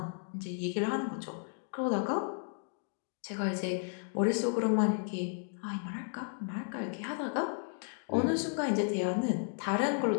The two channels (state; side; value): silent; right; 55 dB below the other